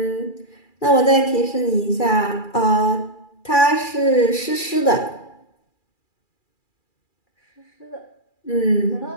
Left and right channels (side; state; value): right; late; 2.4 ms